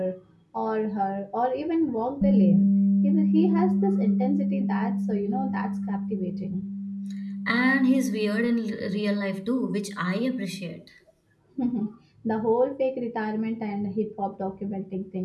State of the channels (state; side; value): identical; both; correlation 1.00